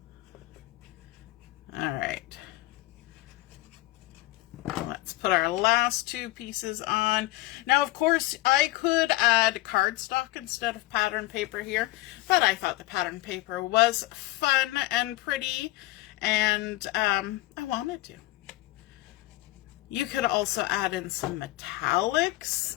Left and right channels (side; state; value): right; quieter; 18.8 dB